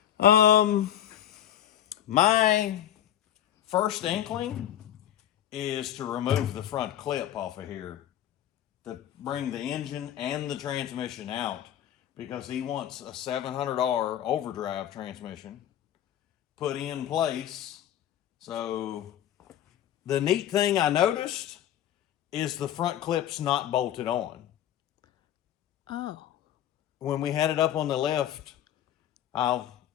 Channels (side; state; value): right; quieter; 11.2 dB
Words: My first inkling is to remove the front clip off of here to bring the engine and the transmission out, because he wants a $700 overdrive transmission put in place. So the neat thing I noticed is the front clip's not bolted on. Oh. When we had it up on the left, I'll